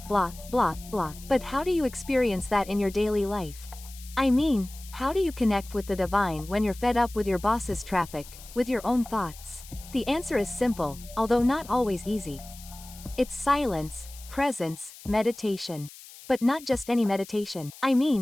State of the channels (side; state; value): left; noise; hiss, 18 dB below the sound